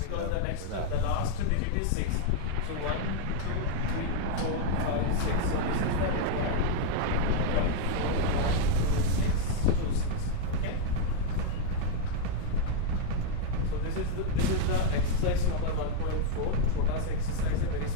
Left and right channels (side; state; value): both; different; correlation 0.00